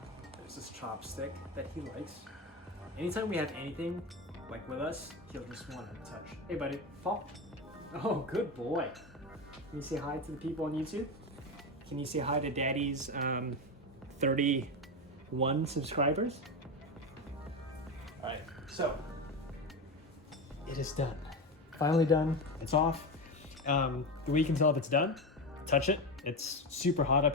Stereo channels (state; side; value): normal; both; correlation 0.17